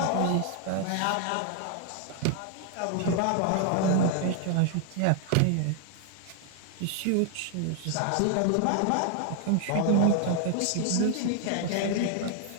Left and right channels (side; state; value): both; different; correlation 0.00